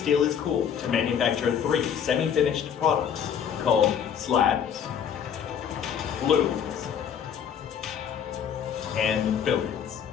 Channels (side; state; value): right; quieter; 8.2 dB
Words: is cooled to manufacture 3 semi-finished products called slabs, looms, and fillets.